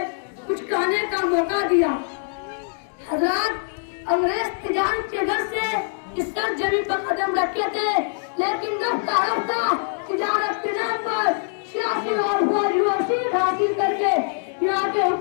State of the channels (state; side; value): silent; right; digital silence